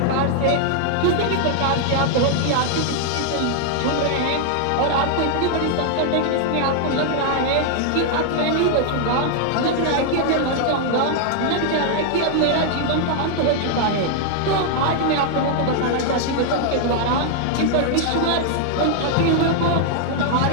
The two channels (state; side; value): different; both; correlation 0.00